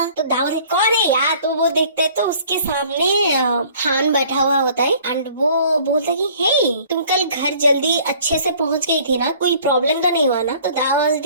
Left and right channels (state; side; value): inverted; both; correlation -0.53